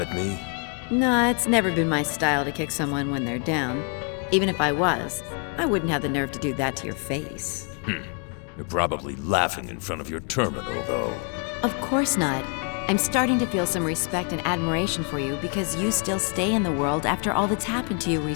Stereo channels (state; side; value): quieter; right; 38.8 dB